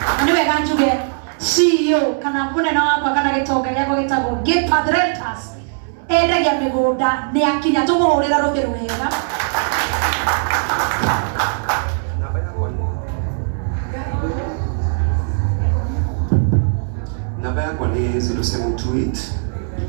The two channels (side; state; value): left; silent; 67 dB below the other